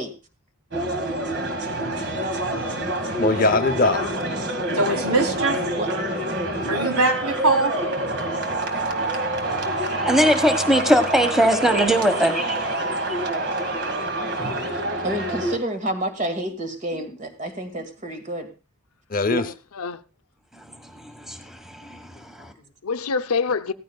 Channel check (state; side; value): normal; both; correlation 0.22